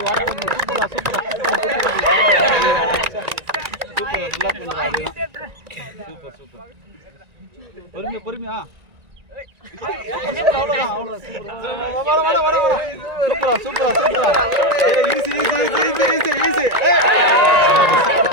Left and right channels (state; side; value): late; left; 1.9 ms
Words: சூப்பரா சூப்பர் சூப்பர் பொறுமையா பொறுமையா